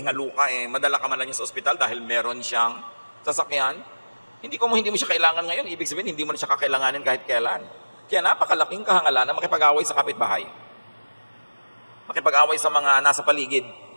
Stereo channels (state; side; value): inverted; both; correlation -1.00